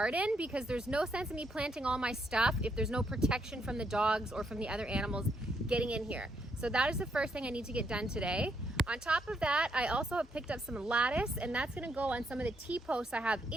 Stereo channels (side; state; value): both; normal; correlation 0.76